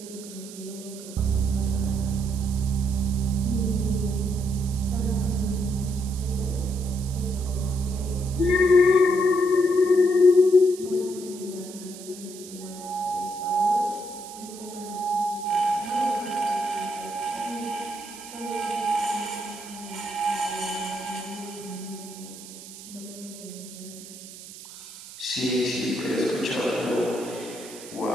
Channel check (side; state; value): right; noise; hiss, 15 dB below the sound